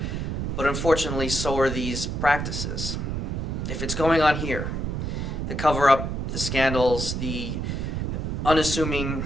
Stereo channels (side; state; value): right; noise; rumble, 2 dB below the sound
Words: but unfortunately so are these practices. If it's going on here, the cover-up, the scandals, the unassuming